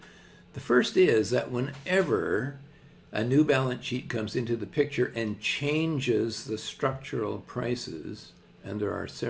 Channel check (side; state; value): both; identical; correlation 1.00